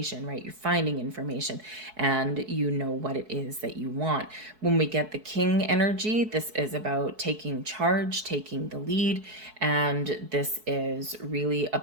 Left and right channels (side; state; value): left; late; 4.6 ms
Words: right? You're finding information and you know what it is that you want. When we get the King energy, this is about taking charge, taking the lead, and this is really